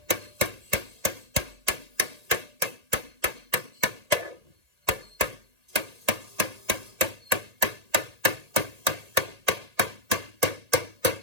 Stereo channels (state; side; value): late; left; 1.8 ms